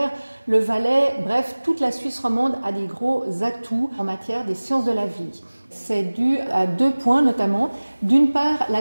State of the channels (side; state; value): both; inverted; correlation -1.00